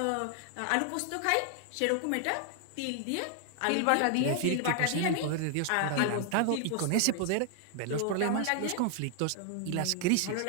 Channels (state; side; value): different; both; correlation 0.00